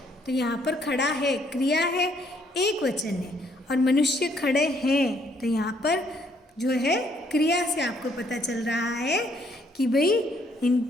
तो यहाँ पर खड़ा है क्रिया है, एक वचन है, और मनुष्य खड़े हैं तो यहाँ पर जो है क्रिया से आपको पता चल रहा है कि भाई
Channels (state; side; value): normal; both; correlation 0.68